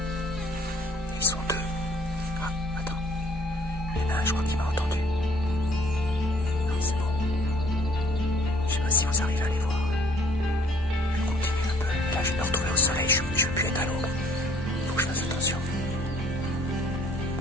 Ils sont deux. Ah, attends. Il y en a un, je crois qu'il m'a entendu. Non, c'est bon. Je sais pas si vous arrivez à les voir. Je continue un peu. Là, je vais me retrouver au soleil. Je ne veux plus être à l'ombre. Faut que je fasse attention.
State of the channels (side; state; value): both; normal; correlation 0.58